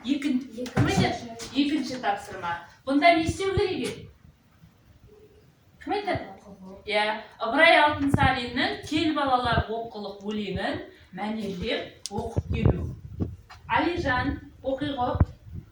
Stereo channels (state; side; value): identical; both; correlation 1.00